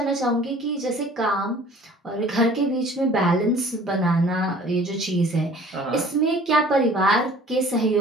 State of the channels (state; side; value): normal; both; correlation 0.50